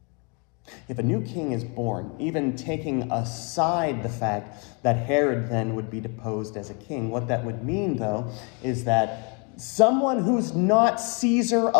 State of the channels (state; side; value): quieter; right; 34.4 dB